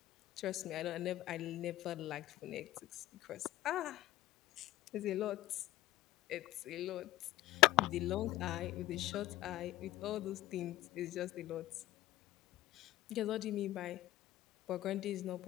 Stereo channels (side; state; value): right; quieter; 15.8 dB